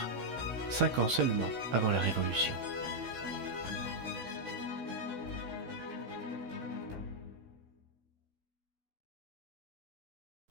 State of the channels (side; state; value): left; late; 16 ms